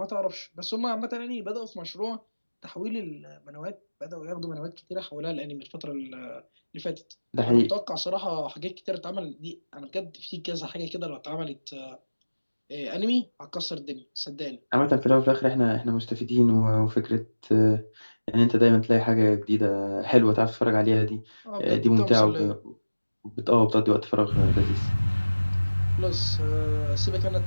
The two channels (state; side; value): inverted; both; correlation -1.00